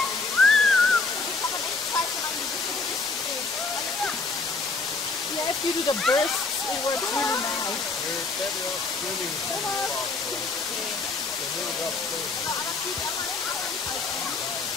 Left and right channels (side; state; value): right; quieter; 4.0 dB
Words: Yeah, if you do the bursts, it works really nice. We're better off swimming from the